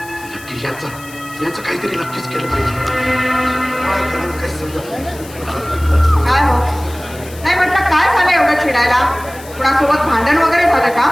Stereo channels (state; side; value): noise; left; hiss, 19 dB below the sound